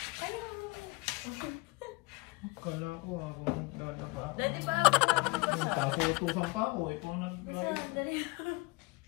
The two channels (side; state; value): right; quieter; 25.3 dB